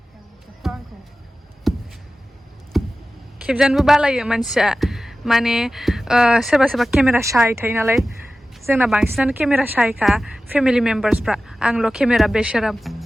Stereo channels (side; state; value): both; normal; correlation 0.95